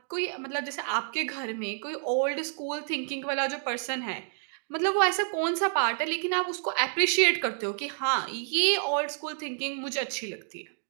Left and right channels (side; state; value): left; silent; 59 dB below the other